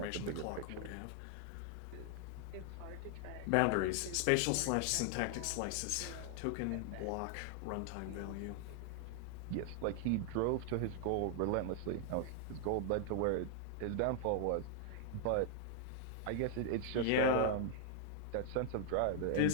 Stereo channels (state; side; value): different; both; correlation 0.00